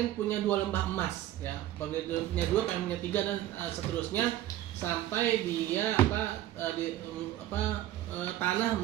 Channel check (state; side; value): quieter; left; 13.7 dB